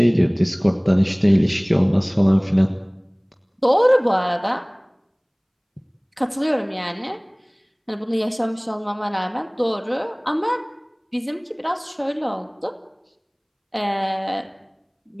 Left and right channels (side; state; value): both; identical; correlation 1.00